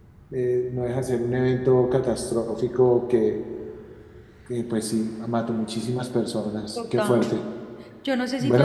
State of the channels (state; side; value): identical; both; correlation 1.00